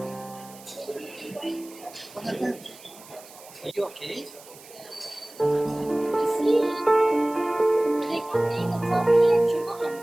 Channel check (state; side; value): noise; right; hiss, 20 dB below the sound